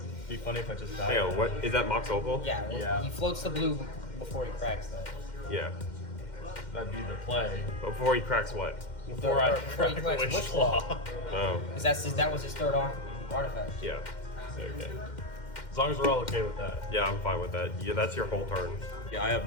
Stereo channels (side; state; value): right; late; 2.1 ms